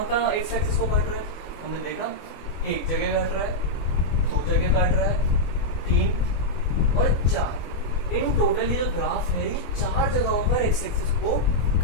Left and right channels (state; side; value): late; right; 25 ms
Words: एक्स एक्सिस को काट रहा है। हमने देखा एक जगह काट रहा है, 2 जगह काट रहा है, 3 और 4। इन टोटल ये जो ग्राफ है, ये 4 जगहों पर एक्स एक्सिस को